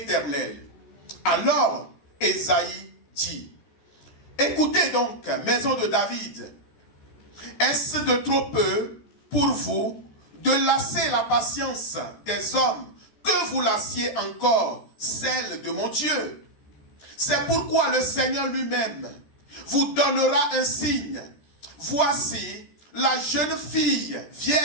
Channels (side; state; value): right; late; 13 ms